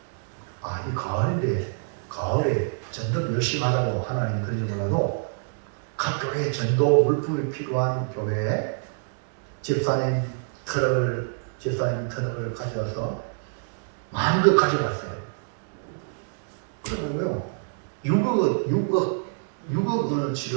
이 가을인데 가을에 전도 열심히 하라고 하나님이 그러지 몰라도 각 교회에 전도 물품이 필요한 교회에 집사님 트럭을 가져와서 마음껏 가져갔어요. 그러고요 6억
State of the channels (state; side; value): silent; left; digital silence